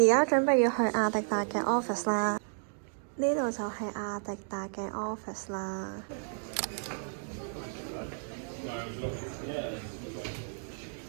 家準備要去阿迪達嘅 office 啦，呢度就係阿迪達嘅 office 啦。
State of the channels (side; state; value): left; silent; 56 dB below the other